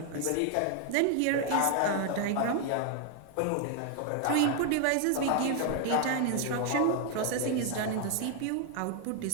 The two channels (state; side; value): different; both; correlation 0.00